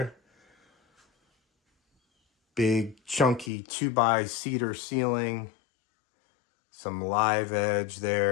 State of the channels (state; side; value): drops out; right; at 3.5 s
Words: Big chunky 2x cedar ceiling. Some live edge